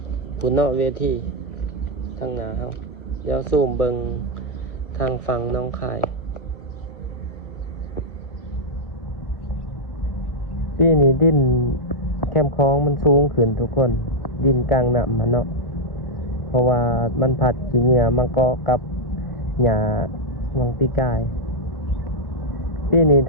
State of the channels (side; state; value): right; late; 1.1 ms